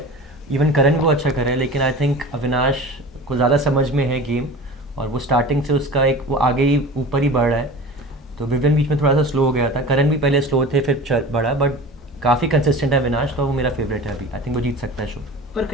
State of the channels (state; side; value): normal; both; correlation 0.36